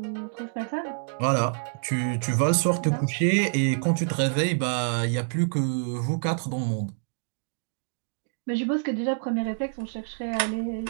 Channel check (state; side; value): silent; left; digital silence